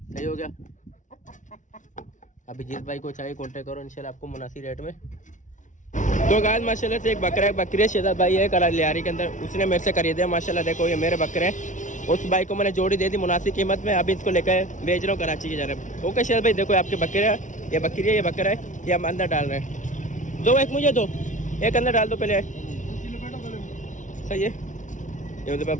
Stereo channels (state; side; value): late; right; 0.37 ms